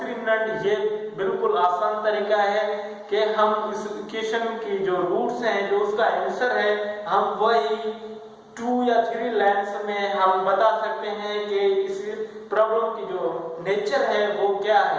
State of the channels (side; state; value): both; identical; correlation 1.00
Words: ये बिल्कुल आसान तरीका है कि हम इस इक्वेशन की जो रूट्स हैं, जो उसका आंसर है, हम वही 2 या 3 लाइन्स में हम बता सकते हैं कि इस प्रॉब्लम की जो नेचर है वो क्या